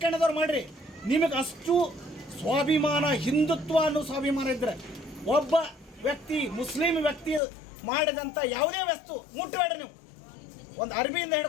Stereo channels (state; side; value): drops out; right; at 7.4 s